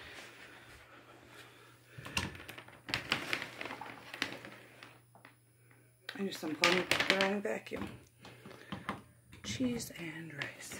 just unplugged the wrong vacuum. Cheese and rice.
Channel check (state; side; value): identical; both; correlation 1.00